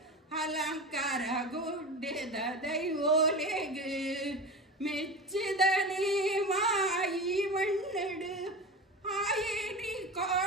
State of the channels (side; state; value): both; normal; correlation 0.28